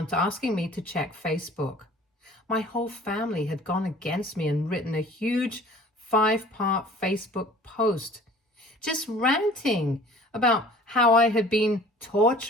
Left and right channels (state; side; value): normal; both; correlation 0.48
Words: asking me to check Facebook. My whole family had gone against me and written a huge 5-part Facebook post, just ranting about how I had been